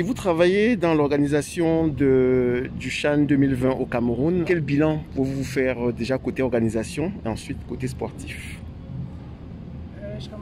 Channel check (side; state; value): both; identical; correlation 1.00